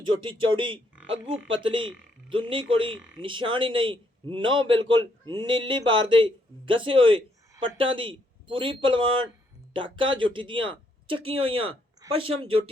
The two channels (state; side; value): normal; both; correlation 0.73